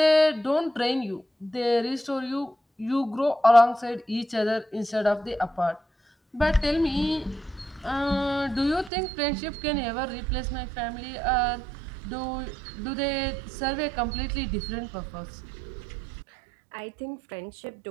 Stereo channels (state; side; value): drops out; left; at 8.9 s